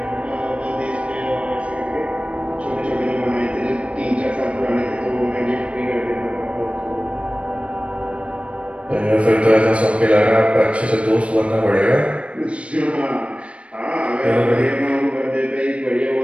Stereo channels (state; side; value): late; left; 0.061 ms